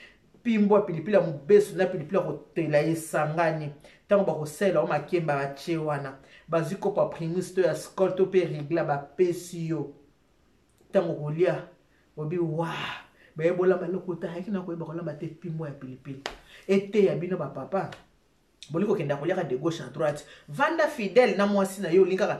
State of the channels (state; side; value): identical; both; correlation 1.00